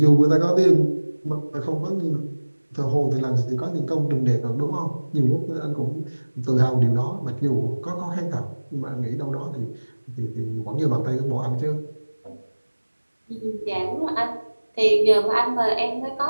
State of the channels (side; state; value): both; inverted; correlation -1.00